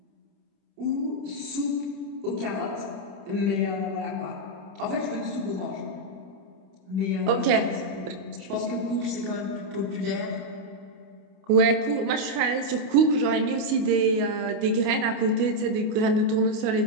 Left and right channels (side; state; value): left; late; 29 ms